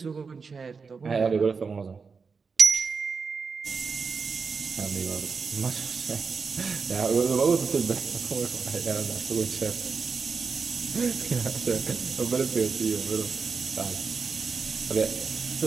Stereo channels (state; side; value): quieter; left; 5.1 dB